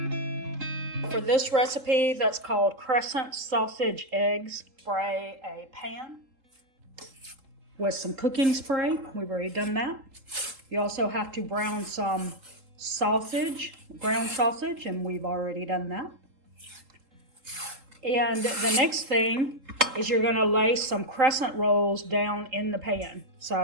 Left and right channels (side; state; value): left; late; 3.8 ms